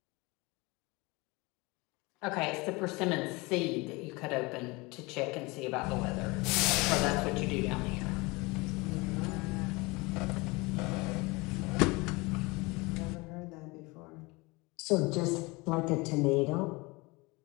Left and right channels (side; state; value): right; quieter; 24.9 dB